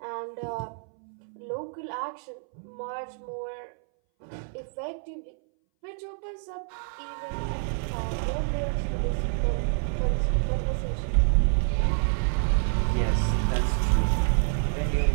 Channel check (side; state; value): left; silent; 60 dB below the other